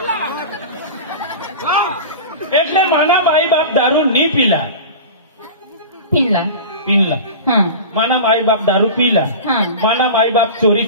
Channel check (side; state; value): both; inverted; correlation -0.32